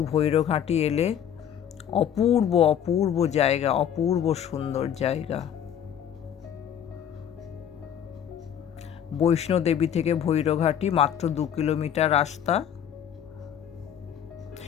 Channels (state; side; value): quieter; right; 9.3 dB